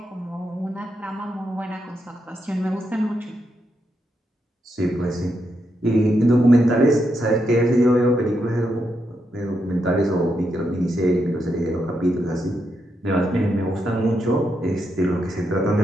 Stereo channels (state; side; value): normal; both; correlation 0.82